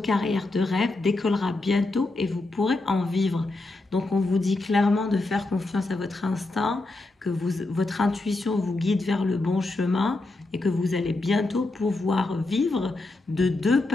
de rêve décollera bientôt et vous pourrez en vivre. Donc on vous dit clairement de faire confiance à votre instinct, que votre intuition vous guide vers le bon chemin et que vous allez bientôt pouvoir vivre de deux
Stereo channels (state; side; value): quieter; right; 3.0 dB